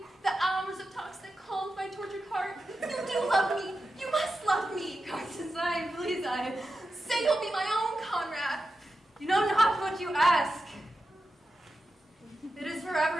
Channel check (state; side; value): normal; both; correlation 0.90